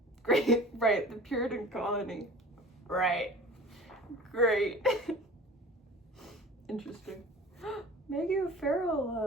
Great, right, the Puritan colony. Right. Great. Interesting. Maggie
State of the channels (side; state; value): both; normal; correlation 0.41